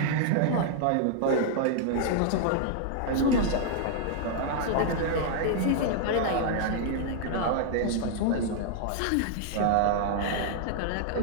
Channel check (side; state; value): both; different; correlation -0.01